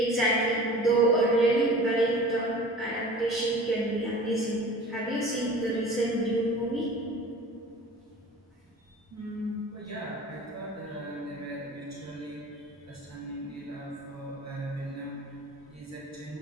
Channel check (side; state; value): both; normal; correlation 0.41